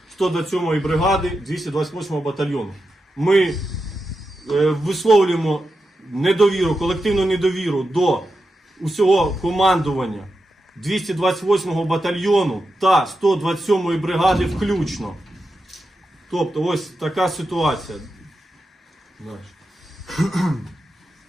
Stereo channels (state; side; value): normal; both; correlation 0.89